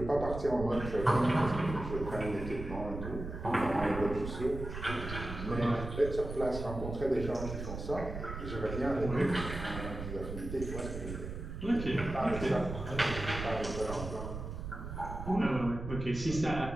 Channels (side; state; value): right; noise; rumble, 7 dB below the sound